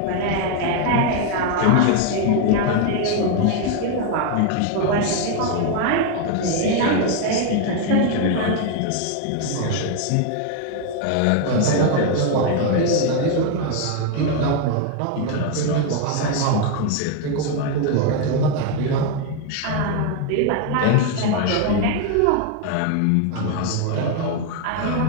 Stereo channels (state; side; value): different; both; correlation 0.01